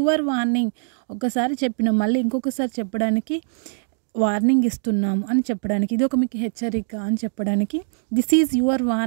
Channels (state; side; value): silent; left; digital silence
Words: warning, ఒకసారి చెప్పిన మళ్ళీ ఇంకొకసారి చెప్పడానికి వార్నింగ్ ఇస్తున్నాము అని చెప్పడానికి, ఇది ఒక మీకు హెచ్చరిక అని చెప్పడానికి దిస్ ఈజ్ యువర్